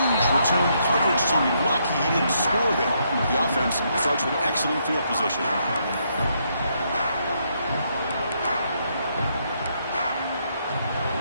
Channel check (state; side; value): inverted; both; correlation -0.75